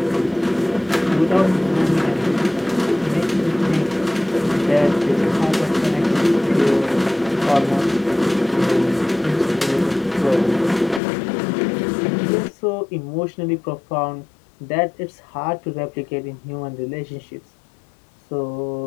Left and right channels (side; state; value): right; drops out; at 11.0 s